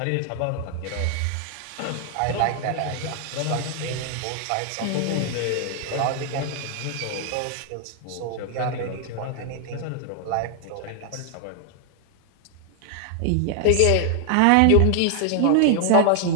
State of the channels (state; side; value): different; both; correlation 0.00